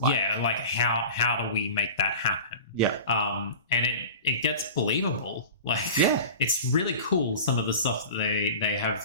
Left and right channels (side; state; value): both; inverted; correlation -0.36